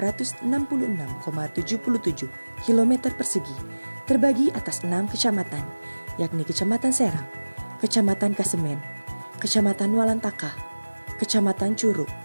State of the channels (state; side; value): inverted; both; correlation -1.00